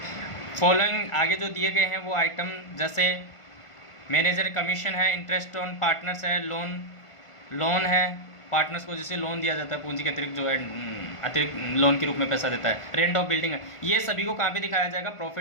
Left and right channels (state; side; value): late; right; 1.5 ms